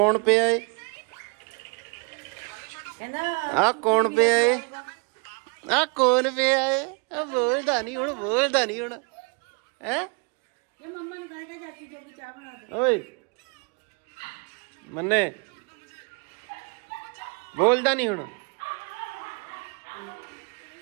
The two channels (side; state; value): left; quieter; 33.7 dB